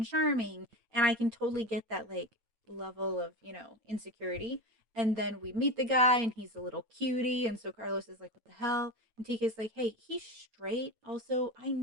charming. And I can totally get that like level of, insecurity. And then we meet the guy and he's a little cutie. And so Carlos is like, what the hell? And TK's like, hey, he's straight. Also, I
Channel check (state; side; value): late; left; 9.0 ms